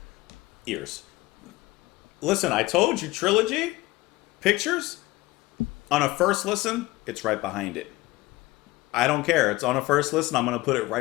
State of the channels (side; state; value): right; quieter; 19.6 dB